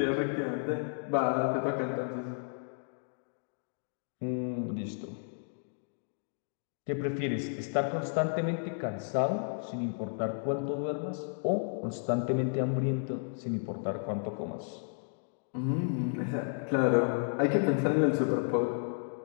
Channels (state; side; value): silent; right; digital silence